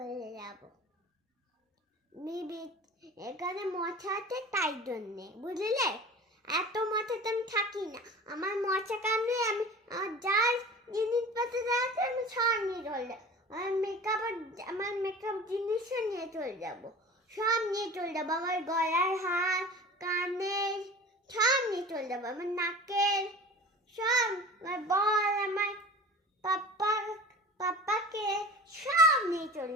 যাবো। এখানে মশা আছে তাই জন্যে, বুঝলে? এত মশাতে আমি থাকি না। আমার মশা কামড়ে আমি যার জিনিসপত্র আছে আমি সব নিয়ে চলে যাবো। আমার মেকআপ জিনিসও নিয়ে চলে যাবো, সব নিয়ে চলে যাবো। আমার গলার হার, কানের সব নিয়ে চলে যাবো। আমার নাকের সব, আমার বল, আমার পাপ্পাকে সব নিয়ে চলে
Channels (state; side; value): normal; both; correlation 0.38